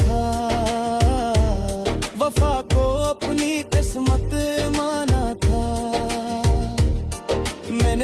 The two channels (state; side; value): identical; both; correlation 1.00